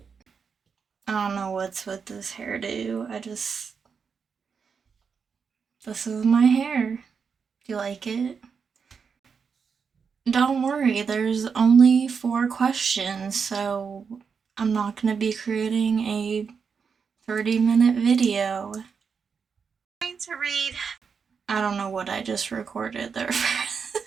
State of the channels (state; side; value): quieter; left; 6.0 dB